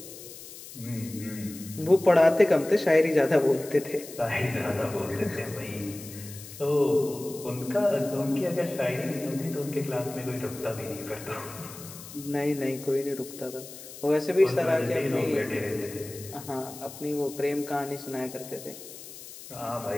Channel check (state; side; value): noise; left; hiss, 15 dB below the sound